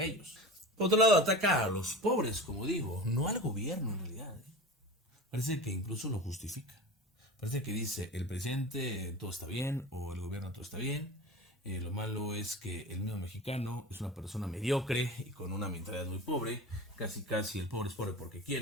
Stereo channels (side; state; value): both; normal; correlation 0.33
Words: ellos. Por otro lado ataca a los pobres, como digo, no al gobierno en realidad. Parece que incluso lo justifica. Parece que dice el presidente todo está bien o el gobierno todo está bien. Lo malo es que el mismo mexicano es una persona mediocre y con una mentalidad muy pobre. Casi el pobre es pobre porque